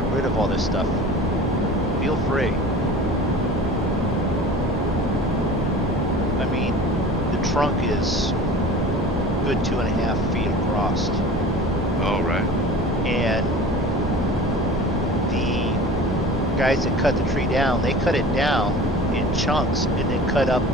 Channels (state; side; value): normal; both; correlation 0.39